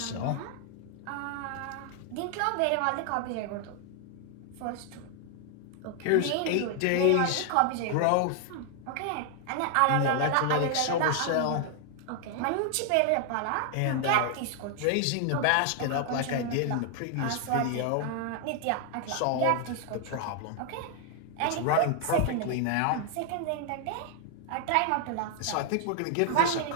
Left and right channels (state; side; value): different; both; correlation 0.00